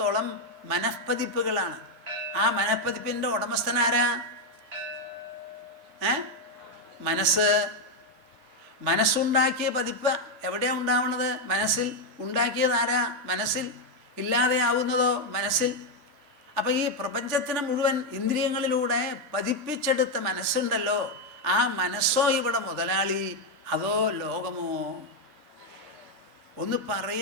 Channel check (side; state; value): left; late; 3.3 ms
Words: മനഃപ്പതിപ്പുകളാണ്. ആ മനഃപ്പതിപ്പിൻ്റെ ഉടമസ്ഥനാരാ? മനസ്സ്. മനസ്സുണ്ടാക്കിയ പതിപ്പ് എവിടെയാണ് ഉണ്ടാവുന്നത്? മനസ്സിൽ. ഉണ്ടാക്കിയതാരാ? മനസ്സിൽ. ഇല്ലാതെയാവുന്നതോ? മനസ്സിൽ. അപ്പം ഈ പ്രപഞ്ചത്തിന് മുഴുവൻ ഇന്ദ്രിയങ്ങളിലൂടെ പതിപ്പിച്ചെടുത്ത മനസ്സുണ്ടല്ലോ, ആ മനസ്സോ ഇവിടെ മുതലാളി, അതോ ലോകമോ? ഒന്ന്